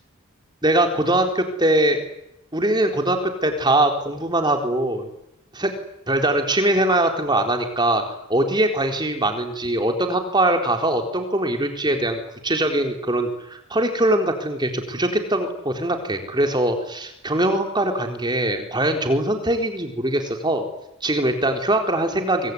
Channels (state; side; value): normal; both; correlation 0.40